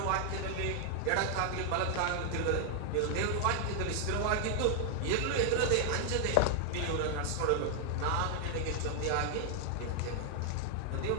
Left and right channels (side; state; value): both; different; correlation 0.00